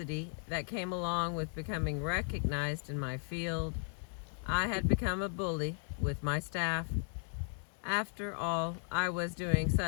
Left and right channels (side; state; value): right; silent; 54 dB below the other